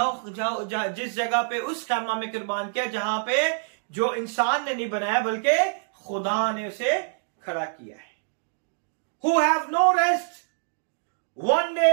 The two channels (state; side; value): silent; left; digital silence